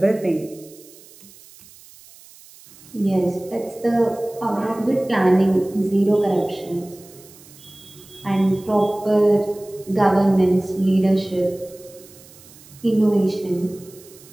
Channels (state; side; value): noise; right; hiss, 23 dB below the sound